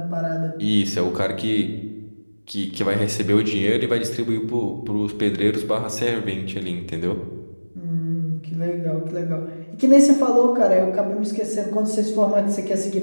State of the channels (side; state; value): both; inverted; correlation -1.00